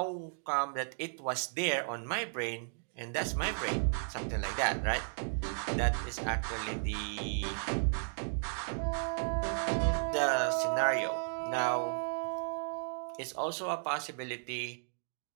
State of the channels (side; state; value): left; silent; digital silence